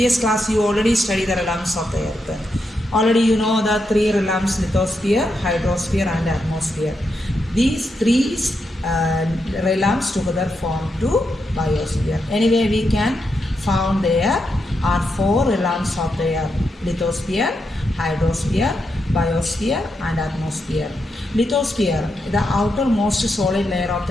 class you already studied the realms of the earth. Already you know the three realms: lithosphere, hydrosphere and atmosphere. These three realms together form to biosphere. Anyway, we can found there are four realms of the earth: lithosphere, hydrosphere, biosphere and atmosphere. Lithosphere, the outermost solid layer of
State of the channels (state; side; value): normal; both; correlation 0.84